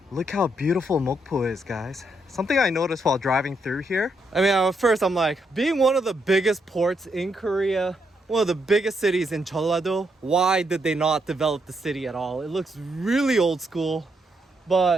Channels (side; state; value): both; normal; correlation 0.78